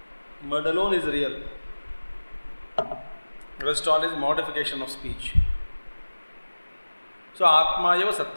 Mud alone is real. Rest all is modification of speech. So atma eva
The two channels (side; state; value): both; inverted; correlation -1.00